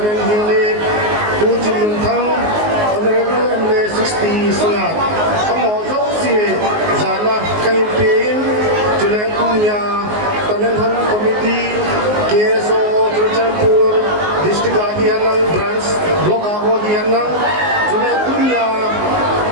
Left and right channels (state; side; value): late; left; 19 ms